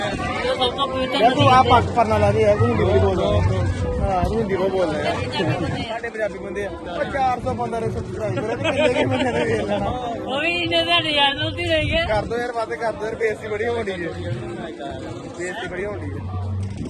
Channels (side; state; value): both; identical; correlation 1.00